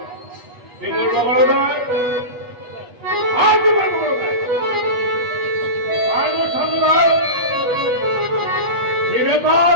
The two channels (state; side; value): late; left; 8.2 ms